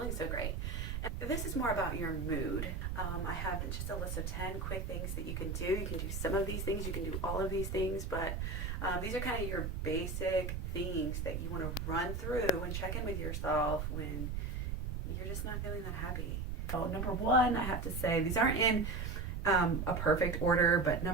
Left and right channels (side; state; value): right; noise; rumble, 3 dB below the sound